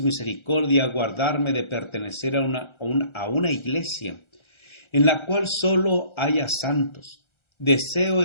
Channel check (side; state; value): right; late; 1.3 ms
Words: misericordia guardarme de pertenecer a una iglesia en la cual solo haya santos. Deseo